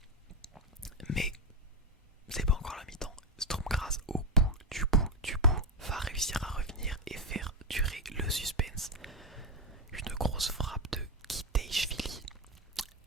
Mais c'est pas encore la mi-temps. Sturm Graz au bout va réussir à revenir et faire durer le suspense. Une grosse frappe de Kitejshvili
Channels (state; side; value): normal; both; correlation 0.07